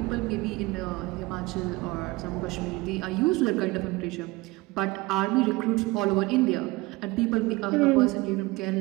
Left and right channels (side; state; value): left; quieter; 22.1 dB